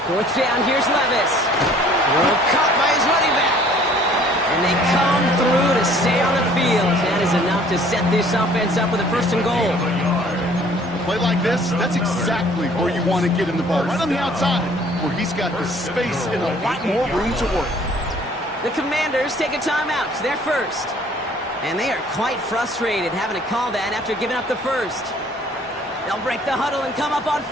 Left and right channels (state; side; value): normal; both; correlation 0.55